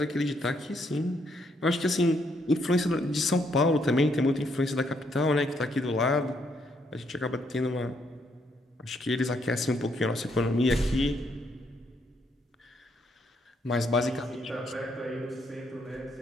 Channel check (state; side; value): normal; both; correlation 0.73